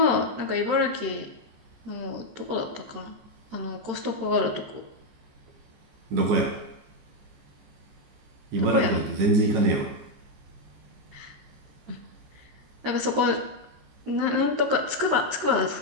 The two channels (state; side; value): late; left; 13 ms